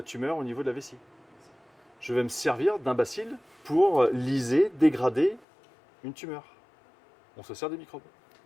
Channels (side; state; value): right; drops out; at 5.5 s